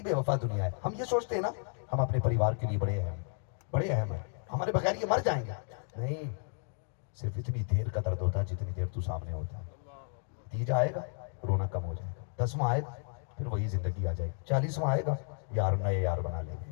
بے وفا دنیا ہے. ہم یہ سوچتے ہیں نا ہم اپنے پریوار کے لیے بڑے اہم ہیں, ہمارے بغیر یہ مر جائیں گے. نہیں, صرف اتنی دیر کا درد ہوتا ہے جتنی دیر تو سامنے ہوتا ہے. تیجا آئے گا, رونا کم ہو جائے گا. 10واں آئے گا, پھر وہی زندگی آ جائے گی. 40واں آئے گا, یار نئے یار بنا لیں گے.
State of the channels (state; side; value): silent; right; 56 dB below the other